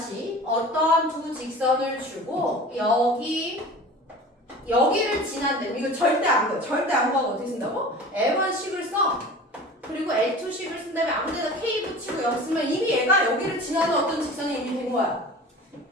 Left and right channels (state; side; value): normal; both; correlation 0.39